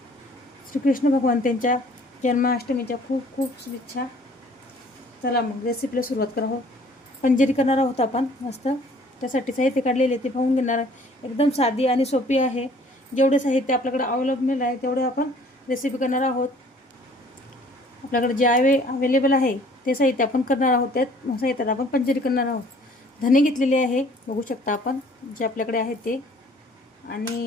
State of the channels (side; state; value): both; normal; correlation 0.55